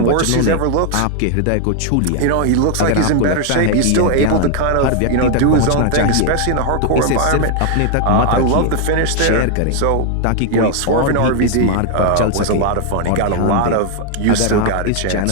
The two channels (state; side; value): different; both; correlation 0.00